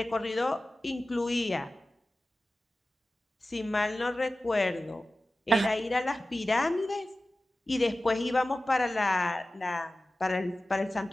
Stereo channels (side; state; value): both; normal; correlation 0.95